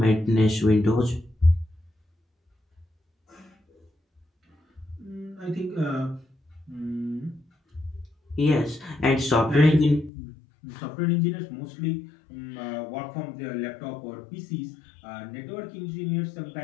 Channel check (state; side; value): drops out; right; at 10.1 s